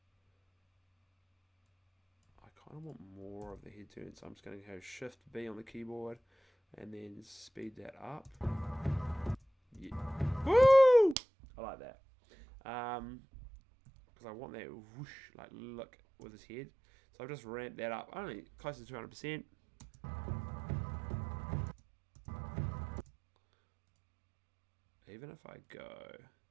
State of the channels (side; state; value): left; drops out; at 11.2 s